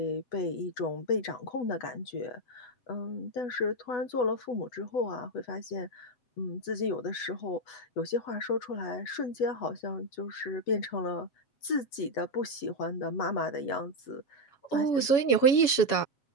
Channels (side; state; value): right; late; 7.1 ms